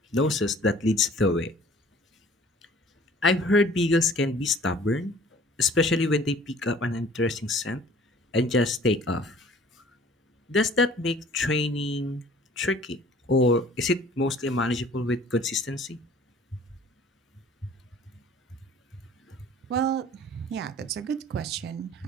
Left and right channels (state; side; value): normal; both; correlation 0.51